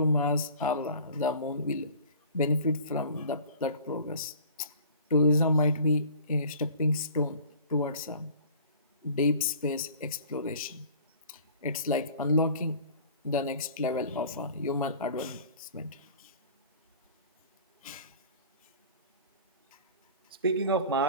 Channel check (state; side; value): inverted; both; correlation -0.46